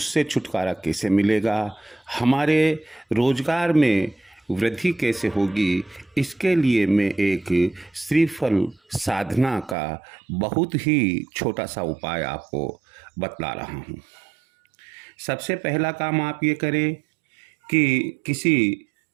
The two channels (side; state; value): left; drops out; at 9.8 s